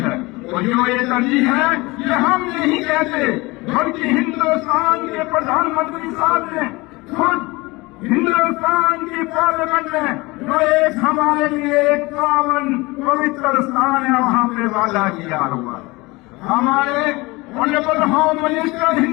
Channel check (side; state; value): right; quieter; 23.1 dB